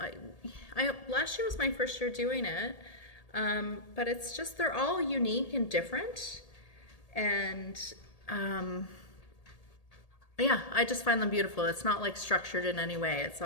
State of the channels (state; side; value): late; right; 1.8 ms